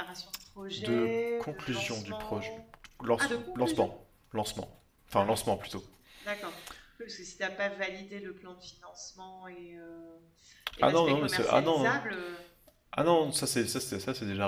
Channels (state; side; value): identical; both; correlation 1.00